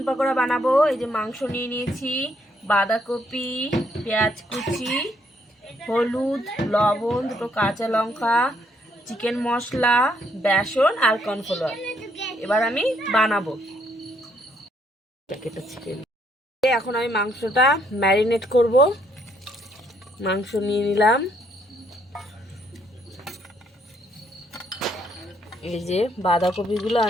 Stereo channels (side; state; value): both; normal; correlation 0.71